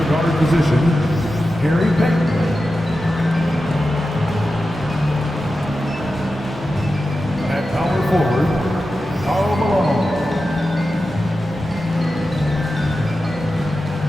guard position, Gary Payton. At power forward, Karl Malone.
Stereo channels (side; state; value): both; normal; correlation 0.92